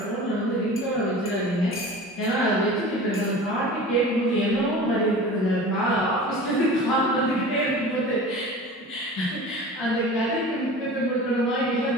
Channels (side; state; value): both; normal; correlation 0.37